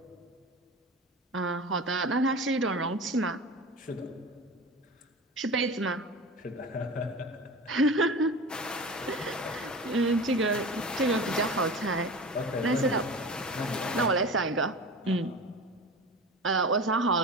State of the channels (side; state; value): both; normal; correlation 0.33